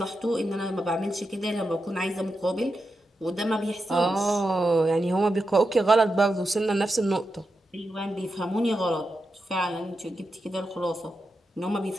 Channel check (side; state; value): both; normal; correlation 0.88